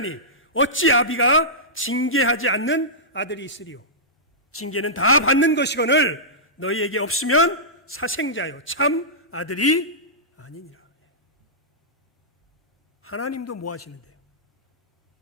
어찌 아비가 징계하지 않는 아들이 있으리요. 징계는 다 받는 것이거늘 너희에게 없으면 사생자요 참 아들이 아니니라. 하나님도 뭐 하시는데요?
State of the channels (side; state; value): both; normal; correlation -0.16